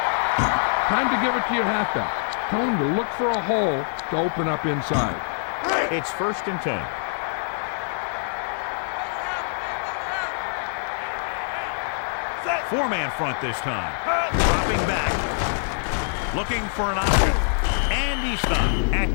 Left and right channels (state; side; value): silent; right; 62 dB below the other